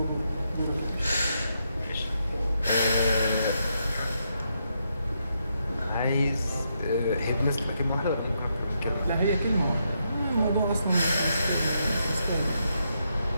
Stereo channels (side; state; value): both; inverted; correlation -0.80